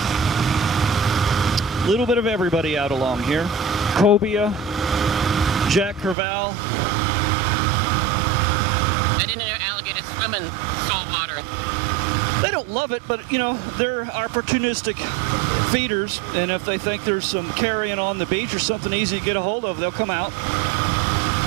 A little bit of everybody out along here. Cobia, Jack Crevalle. I didn't know alligators swim in salt water. They don't love it, but, you know, they're opportunistic feeders, and if they think there's some carrion on the beach or something easy to get a hold of, they'll come out.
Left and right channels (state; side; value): drops out; left; at 6.2 s